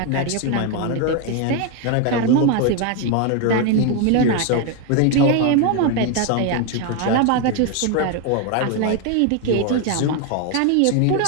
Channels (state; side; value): different; both; correlation 0.01